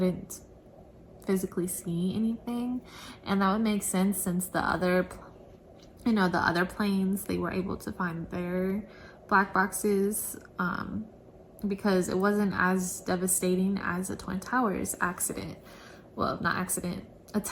physically see anything, and that would make sense since the other planes, they were able to find their black boxes, because it wasn't as devastating as the Twin Towers accident. Well, not accident,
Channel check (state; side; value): identical; both; correlation 1.00